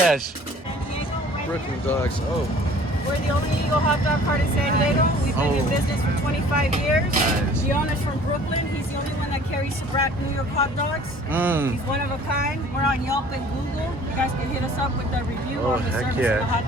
San Diego, Brooklyn dogs. Oh, we're the only legal hot dog cart in San Diego. We've been in business for 25 years. Nice. The owner's from Brooklyn. He's the only one that carries Sabrat New York hot dogs. He's one of a kind. We're on Yelp and Google. You guys can hit us up with the review Oh, on the heck service of the hot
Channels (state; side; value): normal; both; correlation 0.51